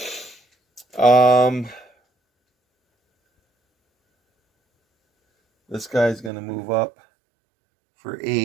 This guy's gonna move up for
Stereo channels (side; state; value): left; drops out; at 6.3 s